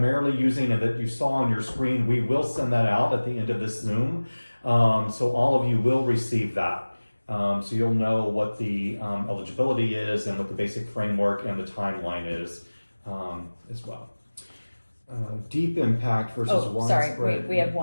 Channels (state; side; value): inverted; both; correlation -1.00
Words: using and that you saw on your screen, we will send that out at the end of this Zoom. So all of you will receive that. So you'll know what the eligibility is and what the basic framework and the timeline is as well. Deep impact versus Oh, sorry, widespread. we have